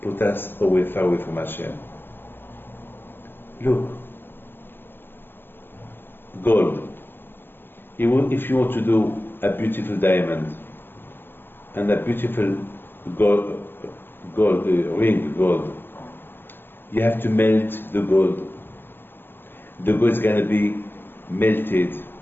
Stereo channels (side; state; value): right; late; 0.099 ms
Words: put us far away from Hashem. Look, gold. If you want to do a beautiful diamond and a beautiful ring gold, you have to melt the gold. The gold is going to be melted